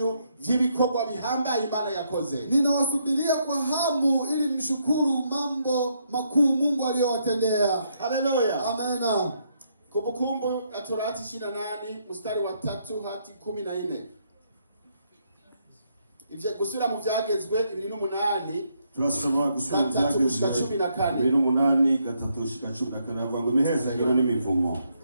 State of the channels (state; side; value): inverted; both; correlation -0.75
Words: vy'ibikorwa bihambaye Imana yakoze. Ninawasubiria kwa hamu ili mshukuru mambo makuu Mungu aliyowatendea. Haleluya. Amena. Kumbukumbu ya Torati 28 mstari wa 3 hadi 14. Ivyo gusubira mu vyagezwe 28 turasoma gusubira mu vyagezwe 28 gatatu shika 14 havuga ngo imihezagiro n'imivumo.